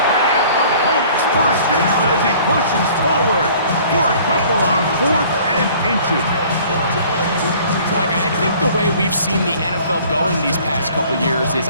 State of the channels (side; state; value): both; inverted; correlation -0.52